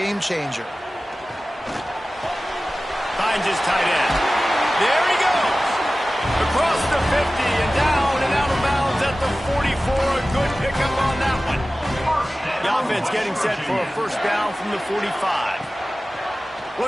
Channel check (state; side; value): normal; both; correlation 0.96